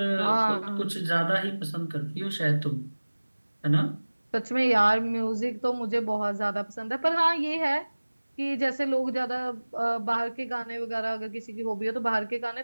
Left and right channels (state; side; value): inverted; both; correlation -1.00